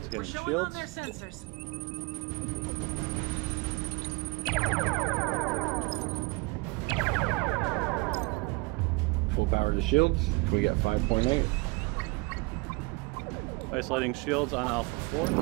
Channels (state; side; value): quieter; left; 27.0 dB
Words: We're showing on their sensors. Full power to shields. Can we get 5.8? Isolating shields on Alpha 4.